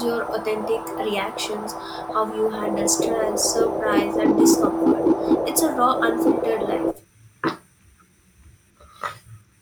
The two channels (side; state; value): both; identical; correlation 1.00